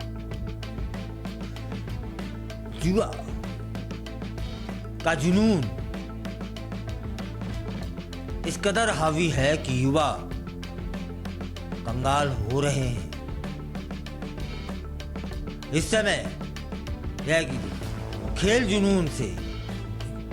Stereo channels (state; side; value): identical; both; correlation 1.00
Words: जुआ का जुनून इस कदर हावी है कि युवा कंगाल हो रहे हैं। इस समय यह कि खेल जुनून से